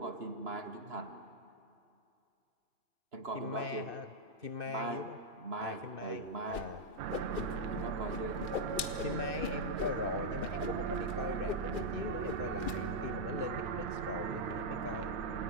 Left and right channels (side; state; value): left; late; 2.4 ms